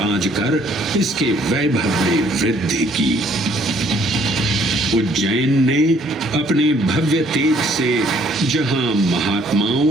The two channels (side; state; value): both; normal; correlation 0.62